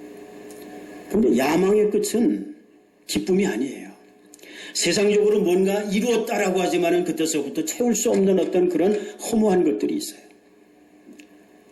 근데 야망의 끝은 기쁨이 아니에요. 세상적으로 뭔가 이루었다라고 하지만은 그때서부터 채울 수 없는 어떤 그런 허무한 것들이 있어요.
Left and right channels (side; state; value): both; identical; correlation 1.00